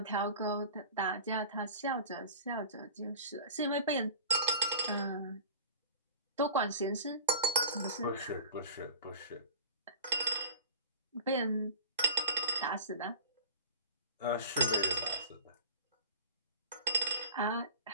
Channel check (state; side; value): inverted; both; correlation -0.38